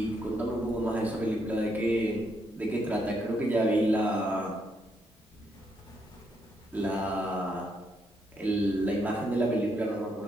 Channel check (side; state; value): both; normal; correlation 0.76